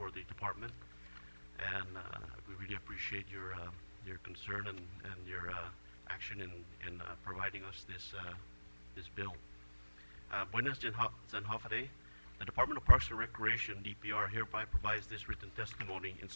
the department, and we really appreciate your concern and your action in providing us this bill. Buenas Zanhafade. The Department of Parks and Recreation, DPR, hereby provides this written testimony in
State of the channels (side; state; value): both; inverted; correlation -1.00